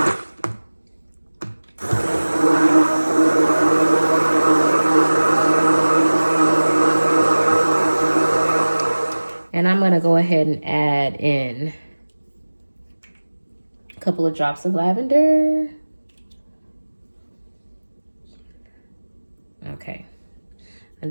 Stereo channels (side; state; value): both; inverted; correlation -1.00